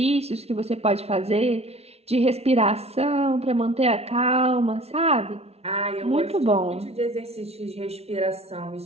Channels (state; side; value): late; left; 0.30 ms